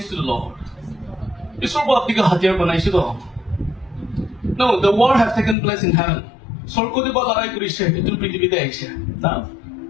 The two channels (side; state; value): right; drops out; at 5.6 s